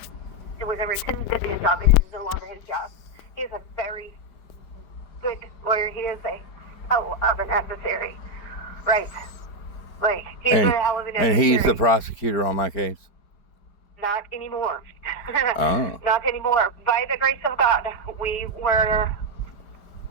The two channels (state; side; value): late; right; 4.9 ms